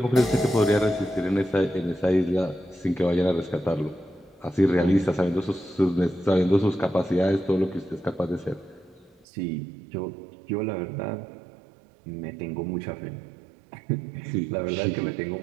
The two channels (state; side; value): drops out; left; at 9.2 s